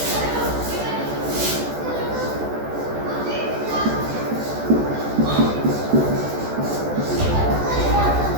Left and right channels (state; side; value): late; left; 14 ms